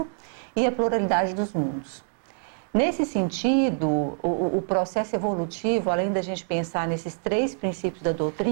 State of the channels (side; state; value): left; silent; 61 dB below the other